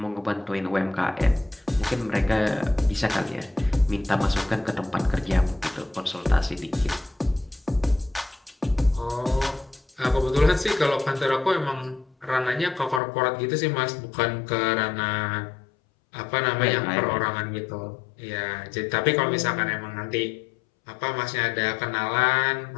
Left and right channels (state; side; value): drops out; right; at 13.0 s